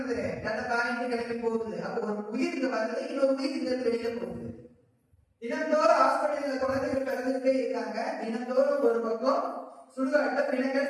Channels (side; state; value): both; identical; correlation 1.00